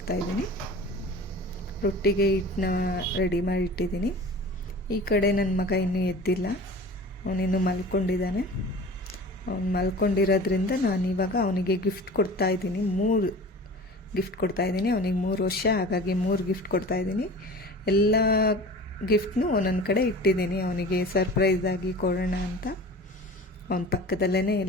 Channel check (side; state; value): both; normal; correlation 0.39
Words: ರೊಟ್ಟಿಗೆ ಹಿಟ್ಟನ್ನ ರೆಡಿ ಮಾಡಿ ಇಟ್ಟಿದ್ದೀನಿ. ಈ ಕಡೆ ನನ್ನ ಮಗ ಇನ್ನೂ ಎದ್ದಿಲ್ಲ, ಅವನಿನ್ನೂ ಮಲ್ಕೊಂಡಿದ್ದಾನೆ. ಅವನು ಮಲ್ಕೊಂಡಿರೋದ್ರಿಂದ ನಾನಿವಾಗ ಅವನಿಗೆ ಗಿಫ್ಟ್ ಕೊಡ್ತಾಯಿದ್ದೀನಿ. 3 ಗಿಫ್ಟ್ ಕೊಡ್ತಾಯಿದ್ದೀನಿ. ಅವನಿಗೆ 3 ವರ್ಷ, ಹಾಗಾಗಿ 3 ಗಿಫ್ಟ್ ಕೊಡ್ತಾಯಿದ್ದೀನಿ. ಎಲ್ಲ ಗಿಫ್ಟ್ನೂ ಒಂದೊಂದು ಕಡೆ ಇಟ್ಟಿದ್ದೀನಿ, ಅವನಿಗೆ ಸರ್ಪ್ರೈಸ್ ಆಗಿ ಕೊಡೋಣ ಅಂತ. ಅವನ ಪಕ್ಕದಲ್ಲೇ